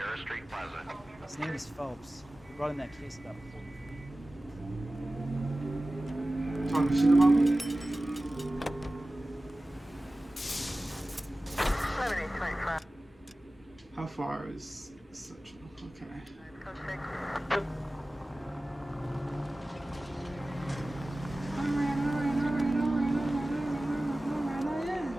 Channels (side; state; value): both; normal; correlation 0.97